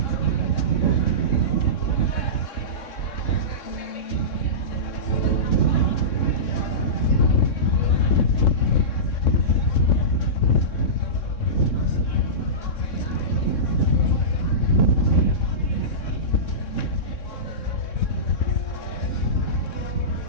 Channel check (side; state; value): right; late; 3.6 ms